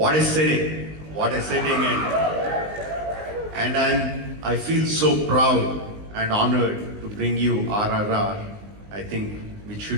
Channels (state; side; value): late; left; 19 ms